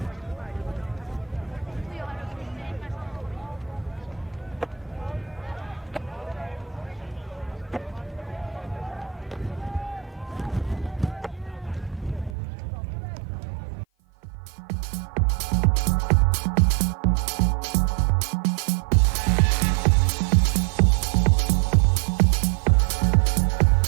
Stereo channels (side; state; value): left; drops out; at 12.4 s